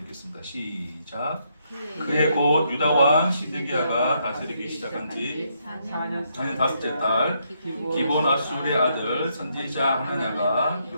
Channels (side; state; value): both; inverted; correlation -0.75